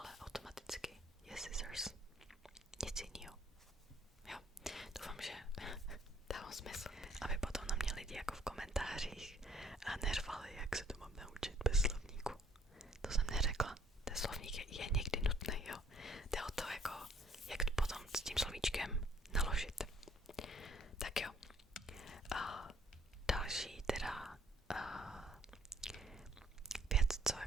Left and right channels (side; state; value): both; normal; correlation 0.62